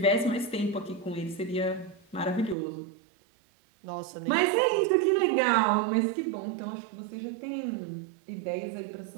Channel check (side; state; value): left; drops out; at 2.6 s